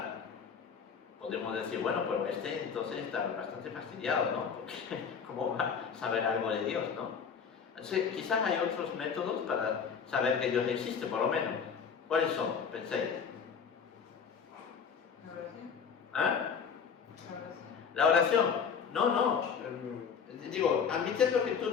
Podemos decir, bueno, pero entonces está bastante fastidiado, ¿no? Porque ¿cómo va a saber algo de Dios, no? Entonces, quizás hay otros métodos para saber que Dios existe, por lo menos. ¿Cuáles son? Penséis. La oración. ¿Ah? La oración. La oración. No. Digo, admitiendo que tú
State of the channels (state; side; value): quieter; right; 6.4 dB